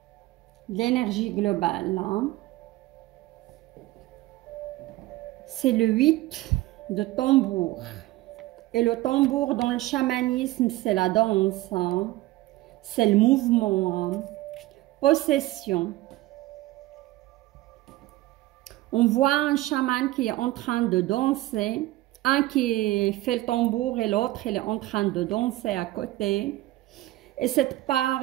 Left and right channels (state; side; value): quieter; left; 17.4 dB